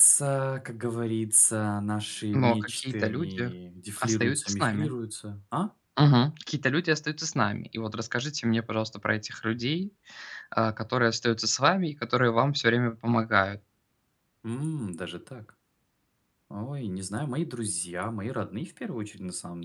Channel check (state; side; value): identical; both; correlation 1.00